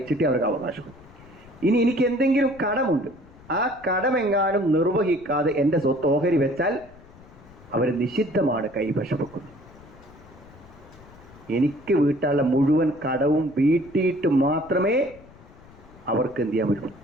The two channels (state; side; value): noise; left; rumble, 23 dB below the sound